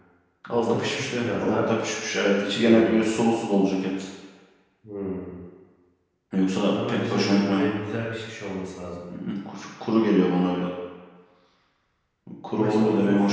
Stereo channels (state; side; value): identical; both; correlation 1.00